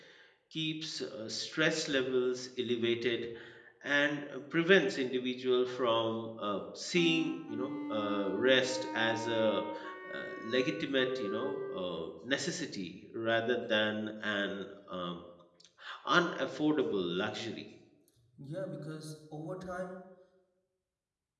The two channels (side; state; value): both; identical; correlation 1.00